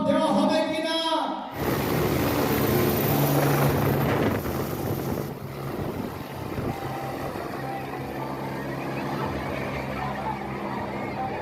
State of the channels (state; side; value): identical; both; correlation 1.00